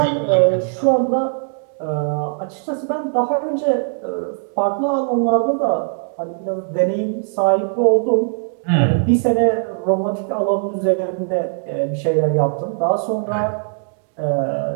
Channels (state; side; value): silent; left; digital silence